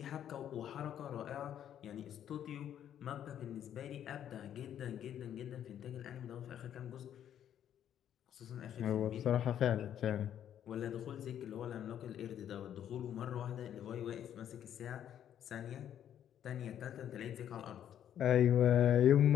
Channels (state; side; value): quieter; right; 10.1 dB